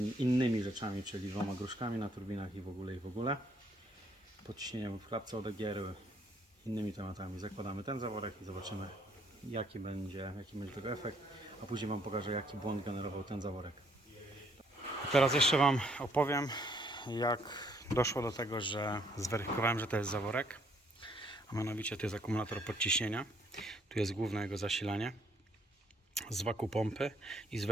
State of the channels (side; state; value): both; normal; correlation 0.67